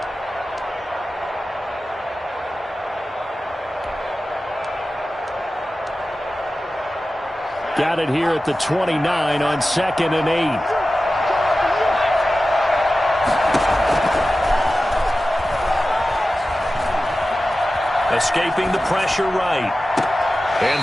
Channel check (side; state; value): both; normal; correlation 0.95